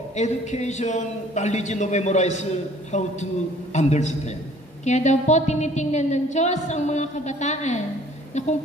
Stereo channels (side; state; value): both; normal; correlation 0.55